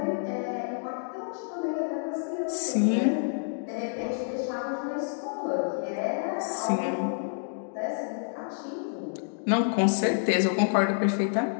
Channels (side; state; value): right; silent; digital silence